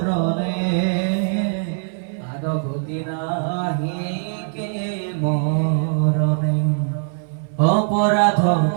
আর গতি নাহি কে মরণে অপরাধ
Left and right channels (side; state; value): left; silent; 58 dB below the other